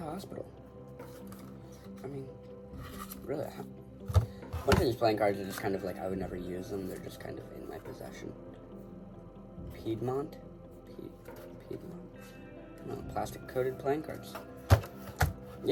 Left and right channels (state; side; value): identical; both; correlation 1.00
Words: Hospital. I mean, really, a bunch of these playing cards are just kind of like, I would never use them. They're just kind of in my possession. Piedmont? Piedmont? No, plastic coated playing cards.